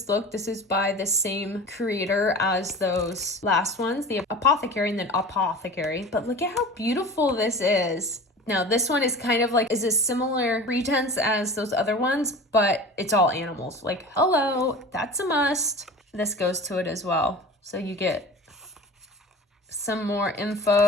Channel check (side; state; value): both; normal; correlation 0.37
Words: look? This is by the same creator as those last ones, the Apothecary and then Apothecary. But look at how beautiful this is. Now, this one is kind of like, is a similar pretense as those other ones, but it's all animals. Like, hello, that's a must. This goes to it as well. So you get some more